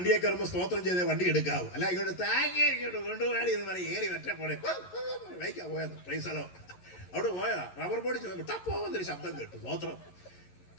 കയറുമ്പോൾ സ്തോത്രം ചെയ്തേ വണ്ടി എടുക്കാവൂ. അല്ല ഇങ്ങോട്ട് താങ്ങി ഇങ്ങോട്ട് കൊണ്ടുപോയാടി എന്ന് പറയും. ഏറി ഒറ്റപ്പോടെ വൈക്കാ പോയത്. പ്രൈസലോ. അവിടെ പോയതാ. റബ്ബർ ബോർഡ് ടപ്പോന്നൊരു ശബ്ദം കേട്ടു. സ്തോത്രം.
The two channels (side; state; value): right; late; 11 ms